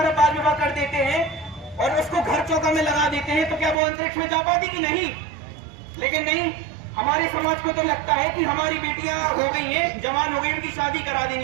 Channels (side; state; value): left; drops out; at 3.8 s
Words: बाल विवाह कर देते हैं और उसको घर चौका में लगा देते हैं तो क्या वो अंतरिक्ष में जा पाती कि नहीं। लेकिन नहीं, हमारे समाज को तो लगता है कि हमारी बेटियां हो गई हैं, जवान हो गई, उनकी शादी करा